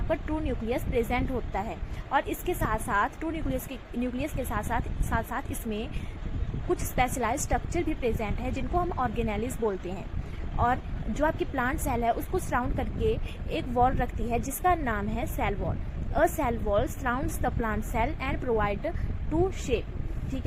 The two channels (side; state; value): both; identical; correlation 1.00